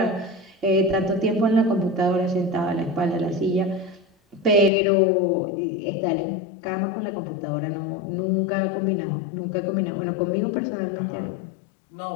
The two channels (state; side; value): drops out; right; at 4.7 s